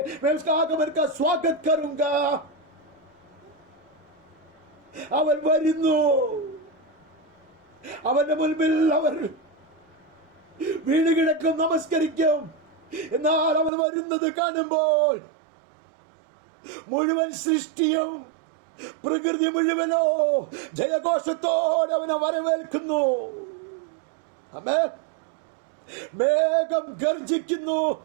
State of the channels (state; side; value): drops out; left; at 13.7 s